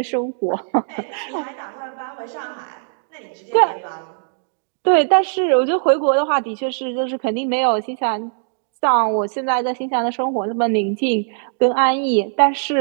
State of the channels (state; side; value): silent; left; digital silence